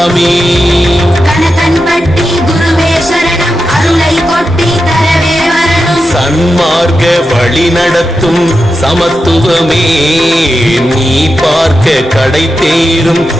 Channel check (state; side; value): normal; both; correlation 0.89